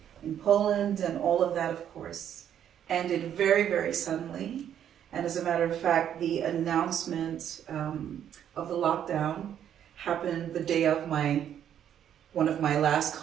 in Poland, and all of that, of course, ended very, very suddenly. And as a matter of fact, the announcement of the lockdown happened the day of one of my last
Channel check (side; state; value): left; quieter; 9.7 dB